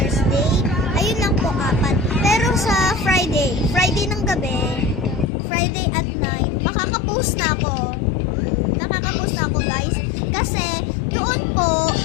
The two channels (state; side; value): drops out; right; at 5.3 s